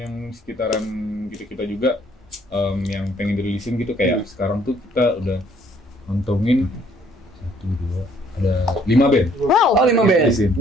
sekitaran kita juga yang pengen dirilisin gitu kayak sekarang tuh kita udah ngantongin 1, 2, ada 5 band. Wow. Oh 5 band.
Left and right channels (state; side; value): normal; both; correlation 0.63